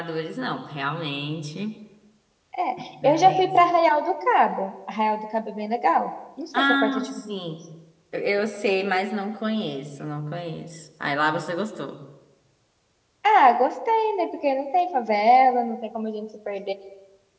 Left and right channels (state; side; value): identical; both; correlation 1.00